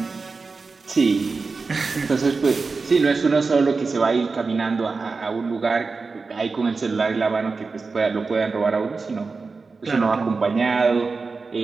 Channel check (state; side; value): quieter; left; 4.3 dB